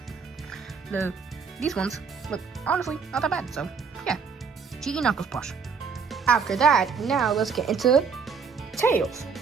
these ones look honestly not that bad. So yeah, GE Knuckles plush. After that, now let's get into Tails.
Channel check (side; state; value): left; quieter; 5.7 dB